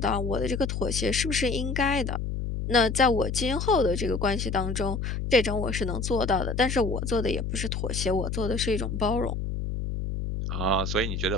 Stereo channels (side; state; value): left; noise; hum, 3 dB below the sound